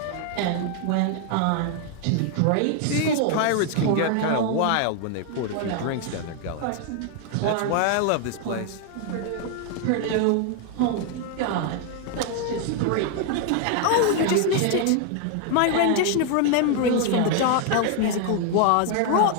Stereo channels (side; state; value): both; different; correlation 0.00